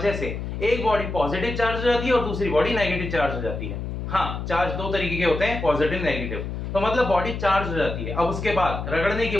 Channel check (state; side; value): noise; left; hum, 5 dB below the sound